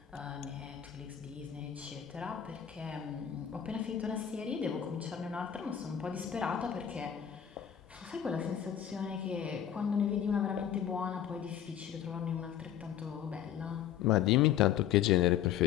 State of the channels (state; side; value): quieter; right; 9.7 dB